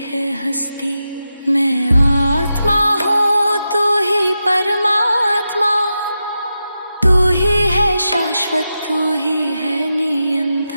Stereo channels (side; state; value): both; inverted; correlation -0.89